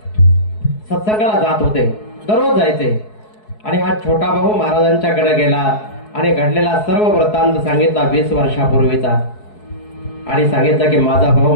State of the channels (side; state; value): right; late; 4.7 ms